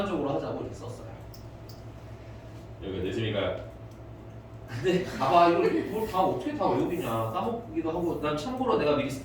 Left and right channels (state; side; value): identical; both; correlation 1.00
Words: 하자고 이렇게 썼어요. 여기가 됐습니까? 근데 봐봐 이걸 다 어떻게 다 외우겠냐 까먹기도 하고 난 참고로 내가 미리